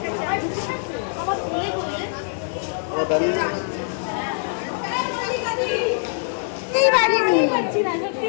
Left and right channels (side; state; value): right; silent; 63 dB below the other